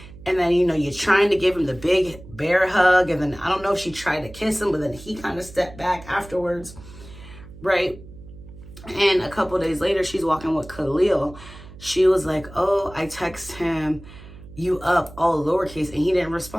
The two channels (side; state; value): right; noise; hum, 18 dB below the sound